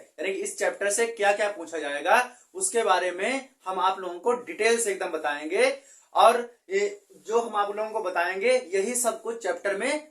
कि इस चैप्टर से क्या क्या पूछा जाएगा उसके बारे में हम आप लोगों को डिटेल से एकदम बताएंगे। और ये जो हम आप लोगों को बताएंगे यही सब कुछ चैप्टर में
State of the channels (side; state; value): both; identical; correlation 1.00